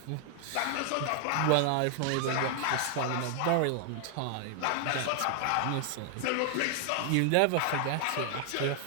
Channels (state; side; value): different; both; correlation 0.00